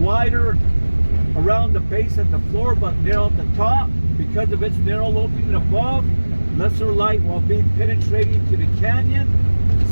around the base at the floor, but narrow at the top. Because of its narrow opening above, lesser light will be penetrating to the canyon.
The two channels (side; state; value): both; inverted; correlation -1.00